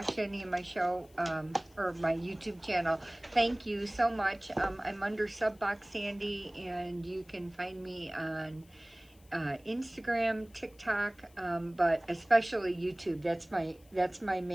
any of my show or my YouTube channel, thank you so much. I'm under Subbox Sandy and you can find me on Instagram, TikTok, but especially YouTube. That's my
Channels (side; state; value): left; noise; hiss, 29 dB below the sound